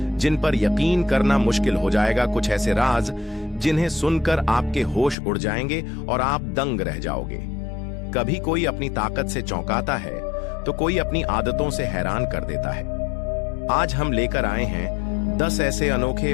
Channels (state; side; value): drops out; right; at 5.2 s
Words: जिन पर यकीन करना मुश्किल हो जाएगा। कुछ ऐसे राज जिन्हें सुनकर आपके होश उड़ जाएंगे और आप दंग रह जाओगे। कभी कोई अपनी ताकत से चौंकाता है तो कोई अपनी आदतों से हैरान कर देता है। आज हम लेकर आए हैं 10 ऐसे अनोखे